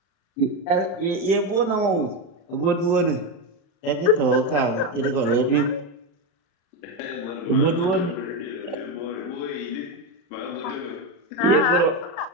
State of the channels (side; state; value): right; late; 35 ms